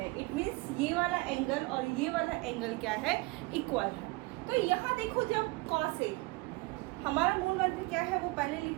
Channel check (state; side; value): quieter; left; 23.4 dB